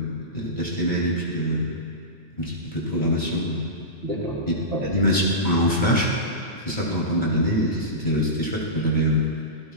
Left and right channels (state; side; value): normal; both; correlation -0.19